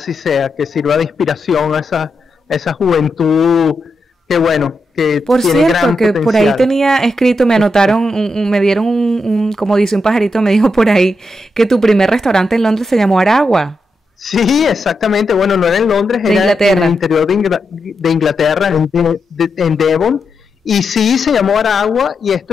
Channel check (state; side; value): normal; both; correlation 0.85